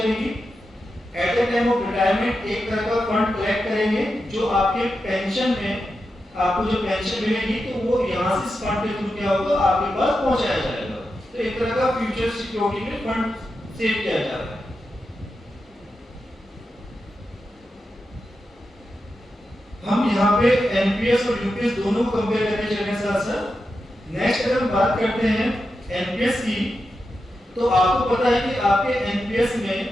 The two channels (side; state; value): both; normal; correlation 0.89